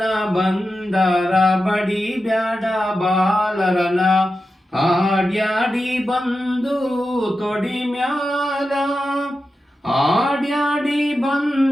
ಬಂದರ ಬಡಿಬ್ಯಾಡ ಬಾಲರನ, ಆಡ್ಯಾಡಿ ಬಂದು ತೊಡಿ ಮ್ಯಾಲ, ಆಡ್ಯಾಡಿ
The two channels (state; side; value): normal; both; correlation 0.91